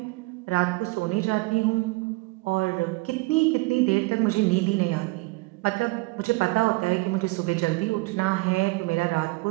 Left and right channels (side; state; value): left; quieter; 24.2 dB